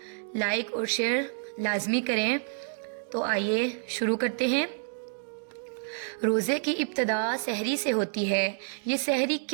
لائک اور شیئر لازمی کریں۔ تو آئیے شروع کرتے ہیں۔ روزے کی ابتدا سحری سے ہوتی ہے۔ یہ سحری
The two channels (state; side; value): silent; left; digital silence